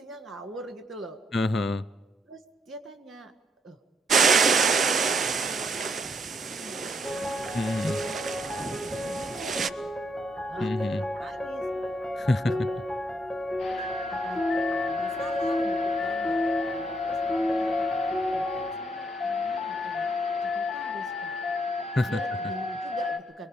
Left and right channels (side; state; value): both; normal; correlation 0.74